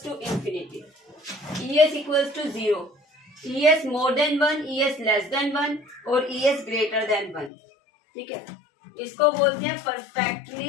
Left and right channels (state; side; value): drops out; right; at 7.5 s